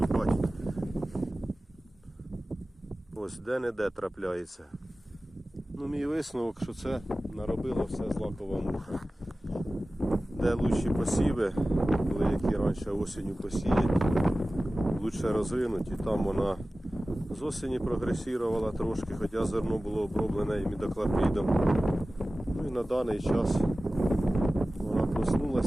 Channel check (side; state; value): both; normal; correlation 0.96